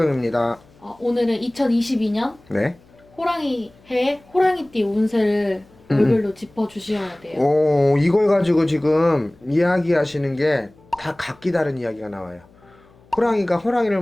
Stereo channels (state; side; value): noise; left; hum, 29 dB below the sound